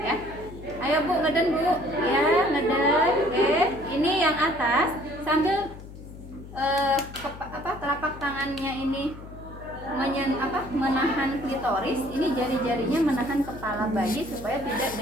ya. Ayo Bu, ngeden Bu ya, ngeden. Oke, ini yang atas sambil telapak tangannya ini menahan klitoris, ini jari-jarinya menahan kepala bayi supaya tidak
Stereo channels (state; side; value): noise; left; hum, 15 dB below the sound